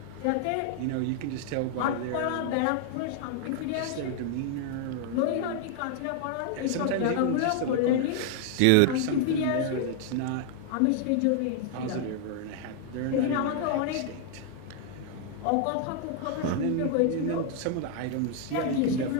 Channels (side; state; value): both; different; correlation 0.00